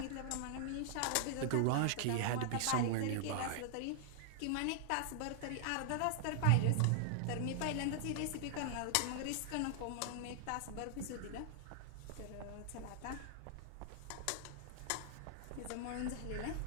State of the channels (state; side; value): different; both; correlation -0.01